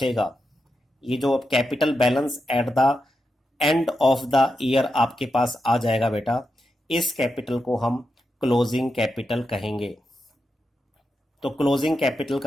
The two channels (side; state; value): both; normal; correlation 0.87